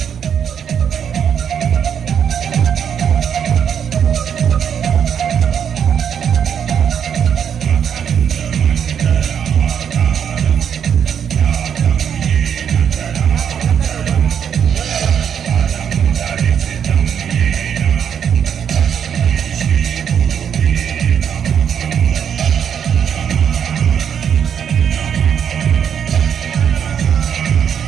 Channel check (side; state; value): left; quieter; 8.1 dB